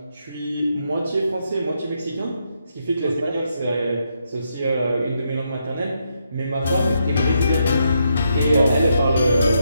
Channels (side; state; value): both; inverted; correlation -0.79